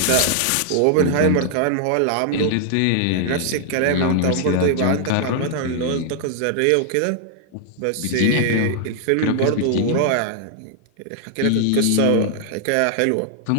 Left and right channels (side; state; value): both; different; correlation -0.01